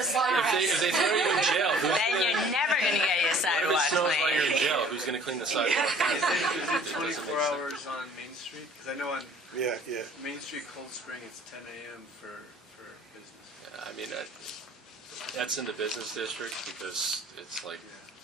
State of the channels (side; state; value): both; normal; correlation 0.53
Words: they throw you in jail, who's Then gonna, you're never going to get your what if sidewalk it snows while you're in cleaned. jail? Who's going to clean the sidewalk? Is It it doesn't 24 make sense. hours on Main Street? Because I know on Yeah, yeah. Main Street, Cold Spring, it's 10 a.m. for business. I mean, that's in the business district because it's like,